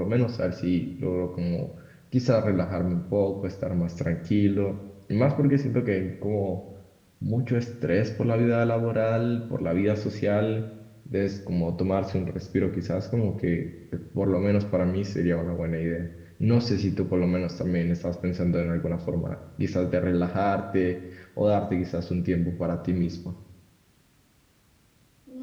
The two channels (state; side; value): identical; both; correlation 1.00